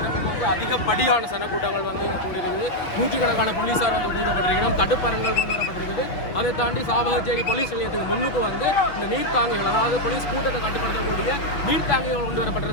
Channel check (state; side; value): late; right; 5.8 ms